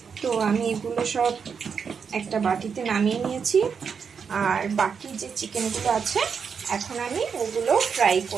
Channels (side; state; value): left; quieter; 6.3 dB